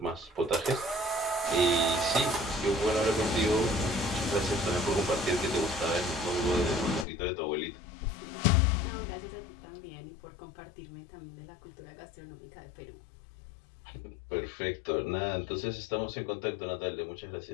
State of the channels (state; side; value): drops out; right; at 7.1 s